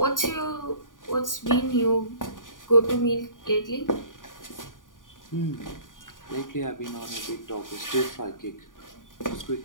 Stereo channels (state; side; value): late; right; 0.88 ms